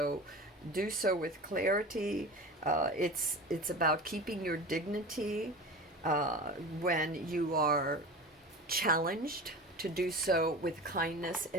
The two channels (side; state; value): both; normal; correlation 0.32